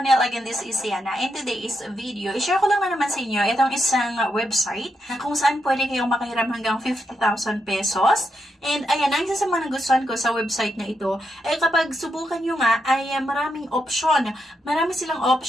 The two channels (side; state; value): both; normal; correlation 0.82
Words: Again, this is Yana. In today's video, i-share ko lang na naman sa inyo itong isang website na kung saan pwede kayong makahiram hanggang 50,000 pesos. And ayan, ang isa sa mga nagustuhan ko sa website na ito, ay kapag subukan nyo nga, ay maraming option. Marami silang